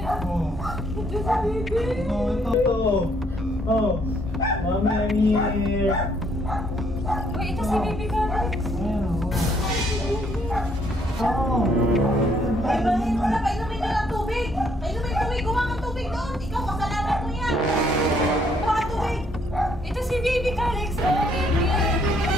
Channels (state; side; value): normal; both; correlation 0.68